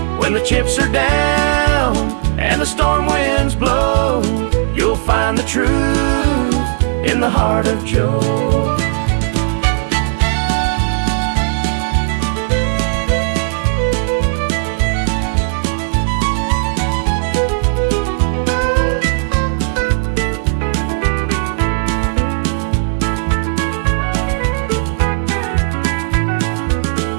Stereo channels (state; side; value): silent; left; 69 dB below the other